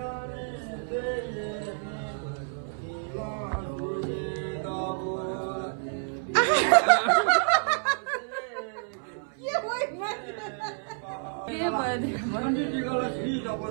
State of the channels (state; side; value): silent; left; 59 dB below the other